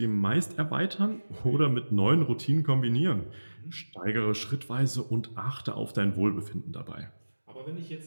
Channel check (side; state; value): both; inverted; correlation -1.00